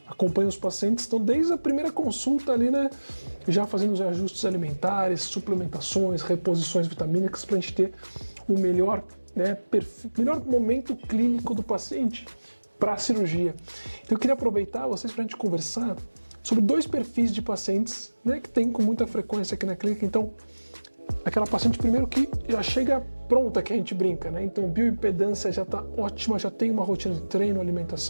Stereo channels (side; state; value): both; inverted; correlation -1.00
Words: acompanha os pacientes, então desde a primeira consulta ali, né, já fazendo os ajustes alimentares, suplementações, reposições vitamínicas, para a gente ter o melhor, né, melhor momento clínico do paciente para a cirurgia. Então, eu queria aproveitar vocês para a gente conversar sobre dois perfis de pacientes, né, que tem com muita frequência aqui na clínica. Então, aquela paciente primeiro que já chega pronta, que a gente brinca, né? Então, bioimpedância já está ótima, já tem uma rotina de treino,